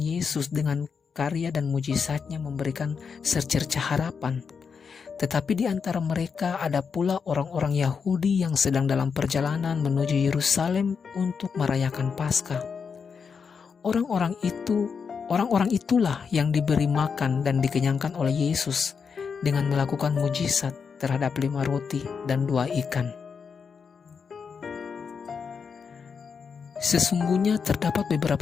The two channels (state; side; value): quieter; right; 6.0 dB